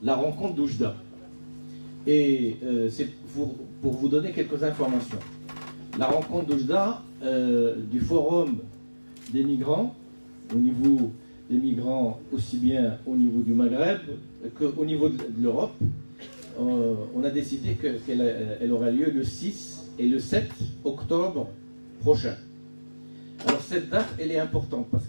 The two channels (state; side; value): inverted; both; correlation -1.00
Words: la rencontre d'Oujda. Et c'est pour vous donner quelques informations. La rencontre d'Oujda, du forum des migrants, au niveau des migrants aussi bien au niveau du Maghreb qu'au niveau de l'Europe, on a décidé qu'elle aura lieu le 6 et le 7 octobre prochain. Alors cette date, elle est importante parce